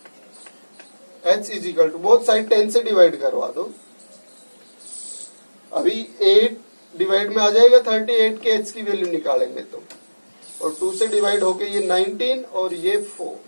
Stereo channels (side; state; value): both; inverted; correlation -1.00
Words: h is equal to, both side 10 से डिवाइड करवा दो। अभी 8 डिवाइड में आ जाएगा 38 के h की वैल्यू निकालेंगे तो, और 2 से डिवाइड होके ये 19 और ये 4।